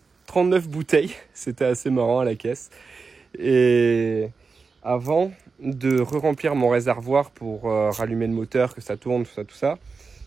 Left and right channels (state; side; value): quieter; left; 4.7 dB